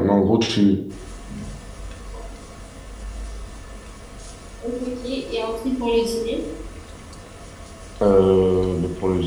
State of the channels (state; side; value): identical; both; correlation 1.00